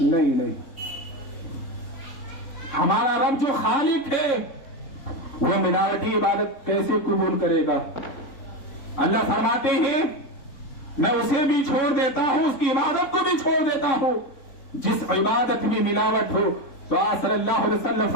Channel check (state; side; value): late; right; 3.6 ms